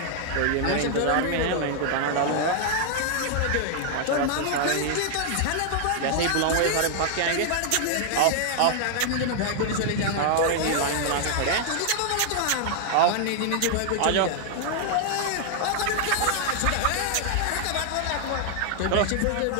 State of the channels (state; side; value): different; both; correlation 0.00